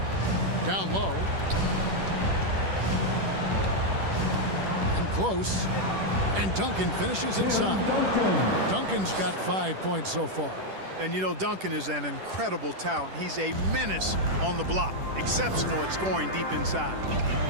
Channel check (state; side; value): late; left; 10 ms